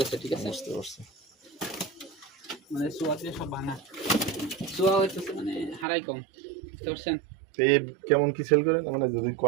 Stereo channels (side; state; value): left; drops out; at 5.9 s